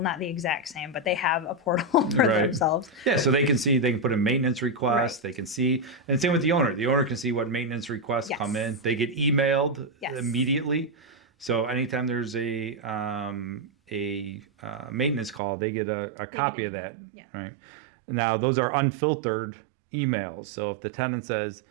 not the exact same, but they have a portal for themselves. Yeah, so they can put in maintenance requests. They can see, and same with the owner. The owner can see what maintenance requests come in. They get emailed immediately. So anytime there's a maintenance call, they get a copy of that. Yeah. Right. Now those are unfiltered emails. So if the tenant says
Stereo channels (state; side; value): drops out; left; at 15.4 s